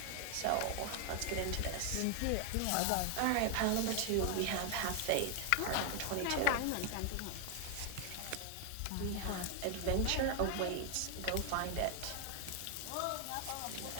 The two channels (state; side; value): different; both; correlation 0.00